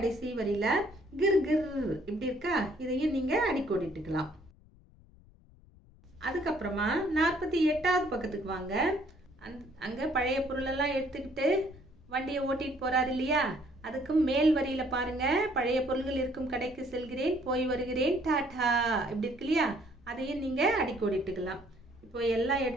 வரியில கிர் கிர் இப்படி இருக்கா, இதையும் நீங்க அடிக்கோடிட்டுக்கலாம். அதுக்கப்புறமா 48வது பக்கத்துக்கு வாங்க. அங்க பழைய பொருள் எல்லாம் எடுத்துக்கிட்டு வண்டியை ஓட்டிட்டு போறாரு இல்லையா, அதுக்கு மேல் வரியில பாருங்க, பழைய பொருள்கள் இருக்கும் கடைக்கு செல்கிறேன், போய் வருகிறேன், டாடா இப்படி இருக்கு இல்லையா, அதையும் நீங்க அடிக்கோடிட்டுக்கலாம். இப்போ எல்லா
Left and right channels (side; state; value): left; noise; rumble, 26 dB below the sound